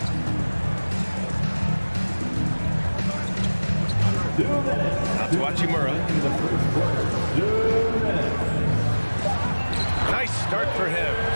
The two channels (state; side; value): inverted; both; correlation -1.00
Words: Out to Hachimura. Nice start for him,